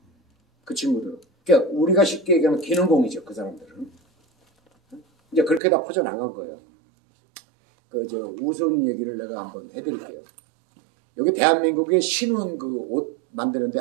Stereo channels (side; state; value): left; drops out; at 5.6 s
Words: 그 친구들은. 그러니까 우리가 쉽게 얘기하면 기능공이죠. 그 사람들은. 이제 그렇게 다 퍼져나간 거예요. 우스운 얘기를 내가 한번 해드릴게요. 여기 대한민국의 신원 옷 만드는 데